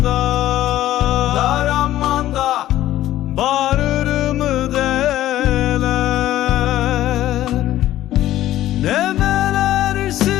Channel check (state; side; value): quieter; right; 13.9 dB